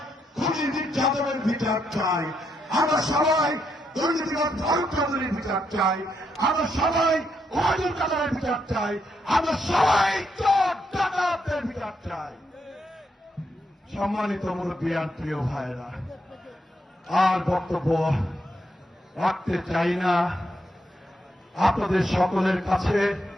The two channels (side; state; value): both; normal; correlation 0.79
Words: খুনি মির্জা আজমের বিচার চাই, আমরা সবাই দুর্নীতিবাদ ফারুক চৌধুরীর বিচার চাই, আমরা সবাই ওবায়দুল কাদেরের বিচার চাই, আমরা সবাই চোর ডাকাতদের বিচার চাই। সম্মানিত মুরব্বিয়ান, প্রিয় ভাইরা, আর বক্তব্য রাখতে চাই না। আপনাদের সকলের কাছে